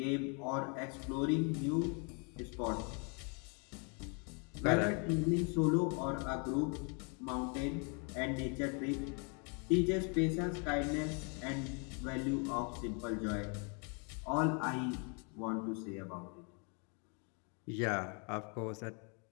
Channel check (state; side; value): quieter; right; 36.6 dB